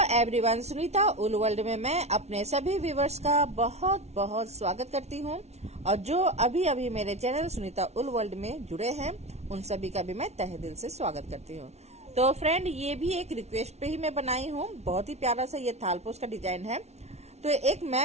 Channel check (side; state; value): left; late; 0.31 ms